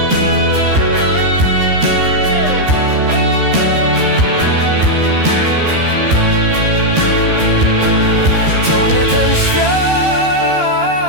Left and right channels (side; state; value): left; late; 13 ms